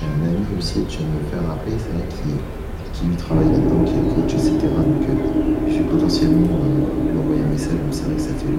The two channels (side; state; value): both; identical; correlation 1.00